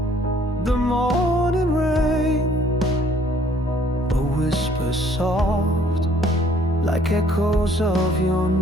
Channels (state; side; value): normal; both; correlation 0.60